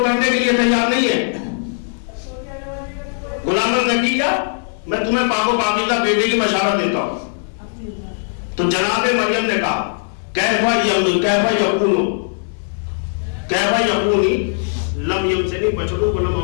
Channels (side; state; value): right; silent; digital silence